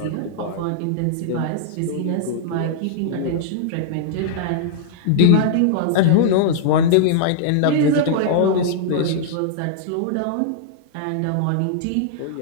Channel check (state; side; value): different; both; correlation -0.01